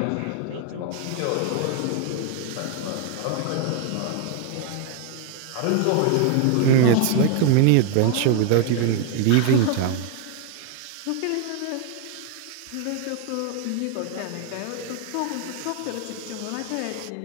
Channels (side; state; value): both; different; correlation 0.00